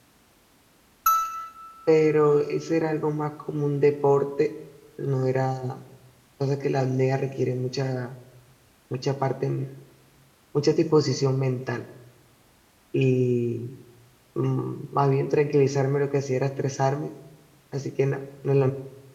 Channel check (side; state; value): both; identical; correlation 1.00